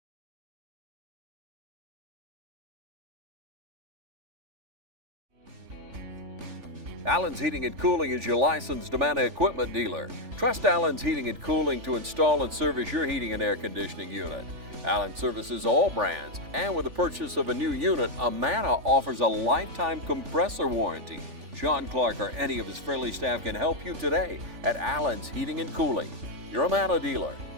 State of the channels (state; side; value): late; left; 3.4 ms